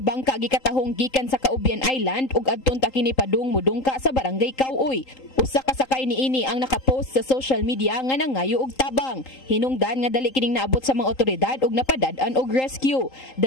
gikatahong gikan sa Caubian Island ug adton ta kini padung mudungka sa barangay Kauoy. Usa ka sakay niini ang nakapost sa social media nga nangayo og tabang. Hinungdan nga dali kining naabot sa mga otoridad ug napadad-an og rescue.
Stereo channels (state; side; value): late; right; 3.8 ms